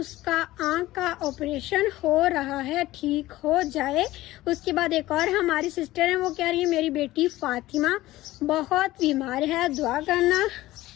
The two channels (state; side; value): quieter; right; 16.8 dB